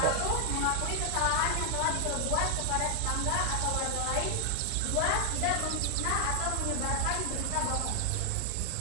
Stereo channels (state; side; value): different; both; correlation 0.00